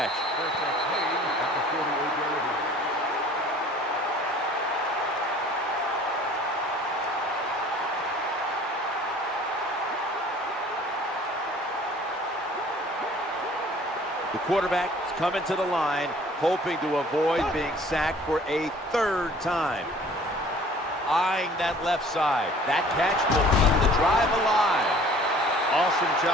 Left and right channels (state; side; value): normal; both; correlation 0.51